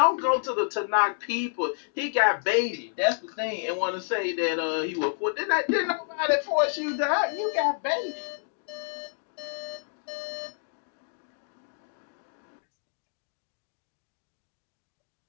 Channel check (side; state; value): right; silent; digital silence